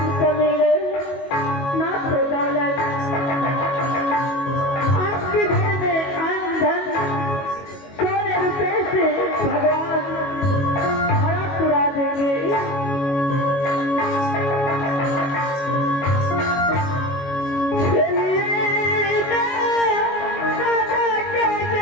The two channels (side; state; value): right; late; 22 ms